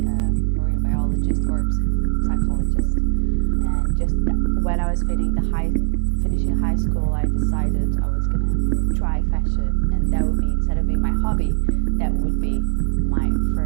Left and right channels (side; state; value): left; silent; digital silence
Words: a marine biologist or psychologist. And just when I was finishing high school, I decided I was going to try fashion, and that would be, instead of being my hobby, that would be my